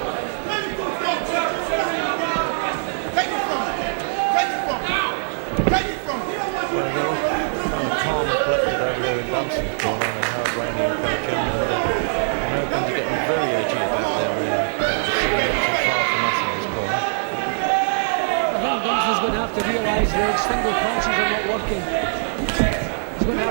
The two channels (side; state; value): left; silent; digital silence